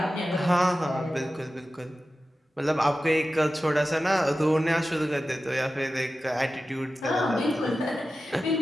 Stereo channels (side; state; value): both; normal; correlation 0.94